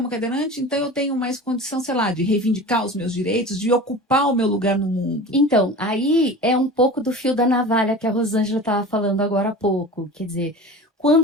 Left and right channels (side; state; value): both; normal; correlation 0.35